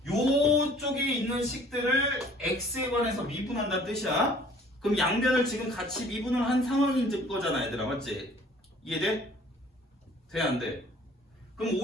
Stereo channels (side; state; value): both; normal; correlation 0.53